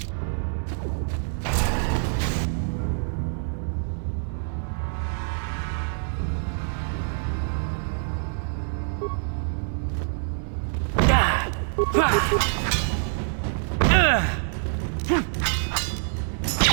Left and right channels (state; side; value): silent; left; 61 dB below the other